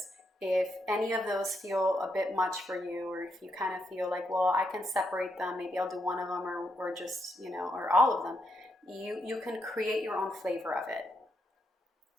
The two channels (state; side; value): normal; both; correlation 0.79